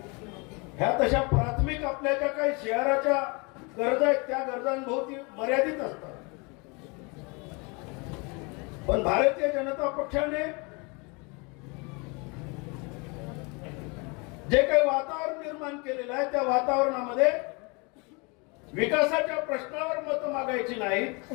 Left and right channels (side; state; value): right; quieter; 29.8 dB